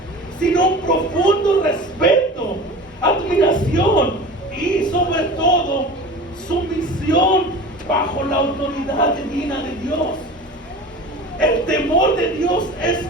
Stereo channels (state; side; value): normal; both; correlation 0.36